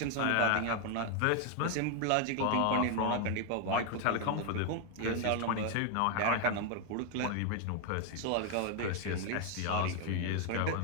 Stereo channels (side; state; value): both; different; correlation 0.00